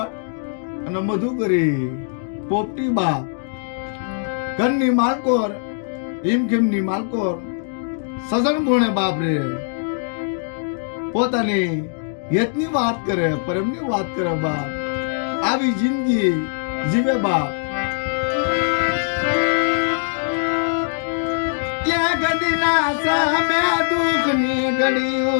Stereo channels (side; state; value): right; silent; digital silence